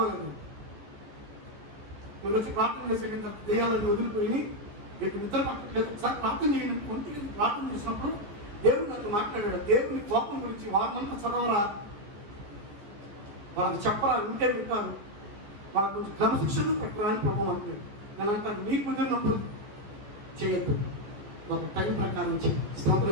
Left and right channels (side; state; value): left; late; 14 ms